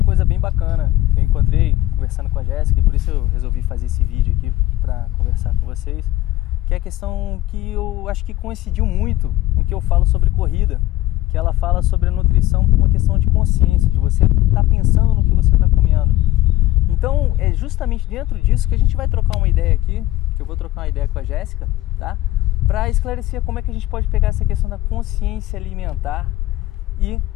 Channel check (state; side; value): quieter; right; 15.9 dB